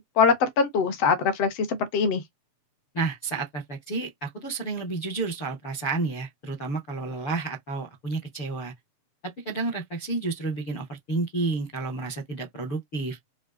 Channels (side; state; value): right; late; 6.9 ms